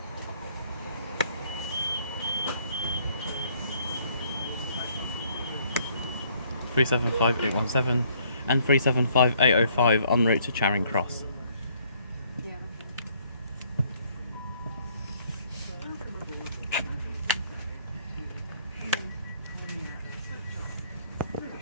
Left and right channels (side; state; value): both; inverted; correlation -0.64